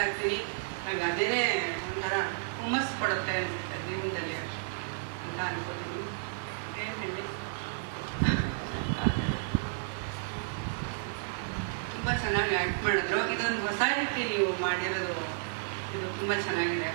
ಇರ್ತೀನಿ. ನನಗೆ ಅದೇನೇ ಒಂಥರ ಹುಮ್ಮಸ್ಸು ಕೊಡುತ್ತೆ ಅನಿಸುತ್ತೆ ಜೀವನದಲ್ಲಿ ಅಂತ ಅನ್ಕೋತೀನಿ. ಏನು ಹೇಳಿ, ತುಂಬ ಚೆನ್ನಾಗಿ ಆ್ಯಕ್ಟ್ ಮಾಡಿದ್ರು. ಇದೊಂದು ಹೊಸ ರೀತಿ ನೀವು ಮಾಡಿರೋದು, ಇದು ತುಂಬ ಚೆನ್ನಾಗಿದೆ.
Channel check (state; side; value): silent; left; digital silence